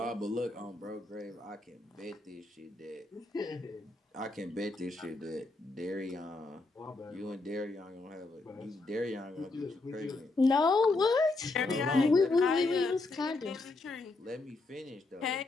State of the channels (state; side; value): quieter; right; 3.3 dB